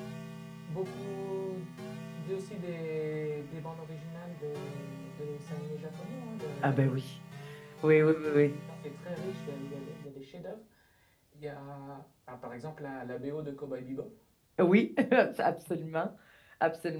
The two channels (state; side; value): identical; both; correlation 1.00